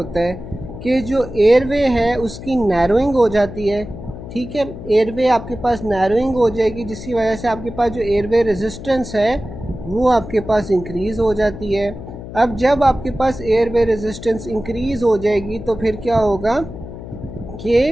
है कि जो एयरवे है उसकी नैरोइंग हो जाती है, ठीक है। एयरवे आपके पास नैरोइंग हो जाएगी जिसकी वजह से आपके पास जो एयरवे रेजिस्टेंस है वो आपके पास इंक्रीज़ हो जाती है। अब जब आपके पास एयरवे रेजिस्टेंस इंक्रीज़ हो जाएगी तो फिर क्या होगा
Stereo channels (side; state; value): left; noise; hum, 12 dB below the sound